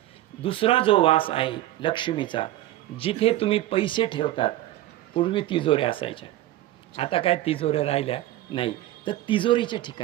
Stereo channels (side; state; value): left; quieter; 14.9 dB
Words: दुसरा जो वास आहे लक्ष्मीचा, जिथे तुम्ही पैसे ठेवतात. पूर्वी तिजोऱ्या असायच्या, आता काय तिजोऱ्या राहिल्या नाही, तर तिजोरीच्या